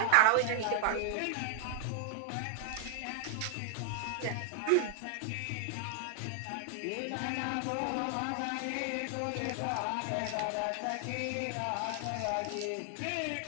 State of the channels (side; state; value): both; different; correlation 0.00